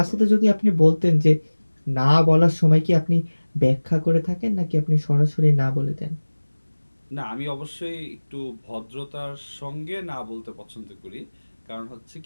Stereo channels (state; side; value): inverted; both; correlation -1.00